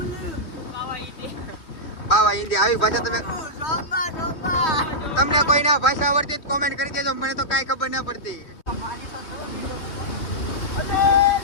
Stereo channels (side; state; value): right; late; 3.2 ms